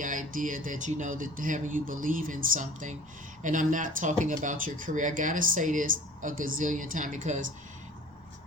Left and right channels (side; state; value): both; normal; correlation 0.46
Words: idea that, that having you believe in something. And I'm not talking about your career. I gotta say this a gazillion times, because